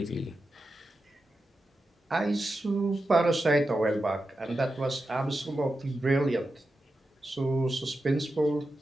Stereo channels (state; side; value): normal; both; correlation 0.90